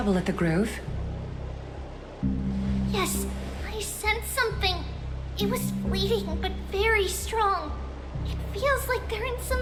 at the Grove? Yes, I sensed something. It was fleeting, but very strong. It feels like they're in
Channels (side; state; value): both; identical; correlation 1.00